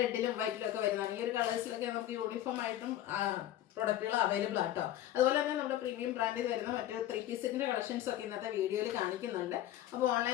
റെഡിലും വൈറ്റിലും ഒക്കെ വരുന്നതാണ്. ഈ ഒരു കളേഴ്സിലൊക്കെ നമുക്ക് യൂണിഫോം ആയിട്ടും പ്രൊഡക്റ്റുകൾ അവൈലബിൾ ആട്ടോ. അതുപോലെ തന്നെ നമ്മുടെ പ്രീമിയം ബ്രാൻഡിൽ വരുന്ന മറ്റു 3 പീസിൻ്റെ കളക്ഷൻസ് ഒക്കെ ഇന്നത്തെ വീഡിയോയിൽ കാണിക്കുന്നുണ്ട്. അപ്പോൾ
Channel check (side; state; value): right; quieter; 12.9 dB